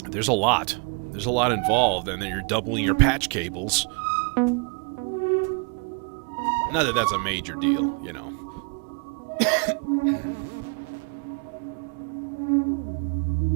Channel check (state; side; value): quieter; left; 36.7 dB